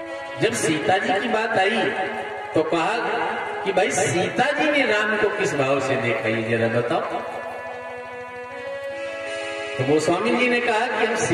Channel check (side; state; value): both; identical; correlation 1.00